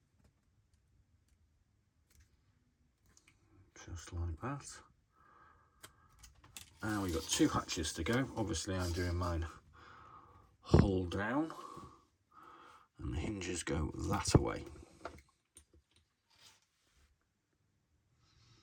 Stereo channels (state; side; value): identical; both; correlation 1.00